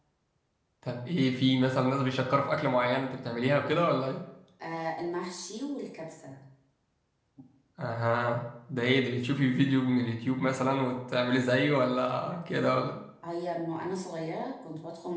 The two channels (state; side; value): identical; both; correlation 1.00